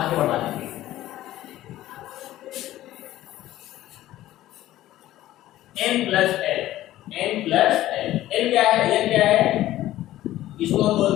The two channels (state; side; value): quieter; right; 14.5 dB